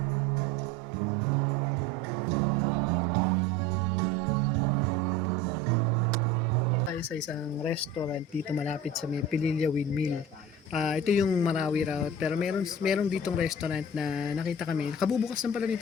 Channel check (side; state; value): both; normal; correlation 0.38